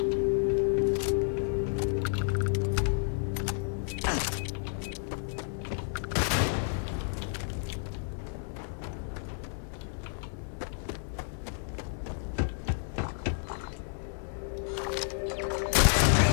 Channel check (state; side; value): silent; right; 57 dB below the other